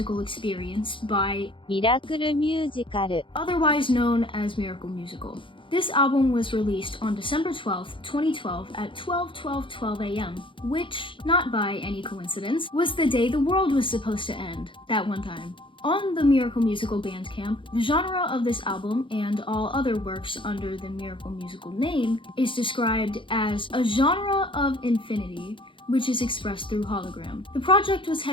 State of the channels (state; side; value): late; right; 0.25 ms